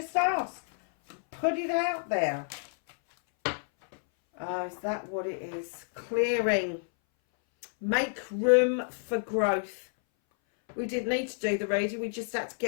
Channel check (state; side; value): silent; right; 58 dB below the other